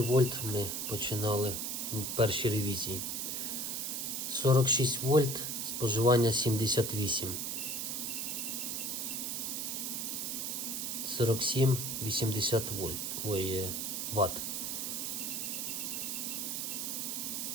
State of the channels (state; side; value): noise; right; hiss, 2 dB below the sound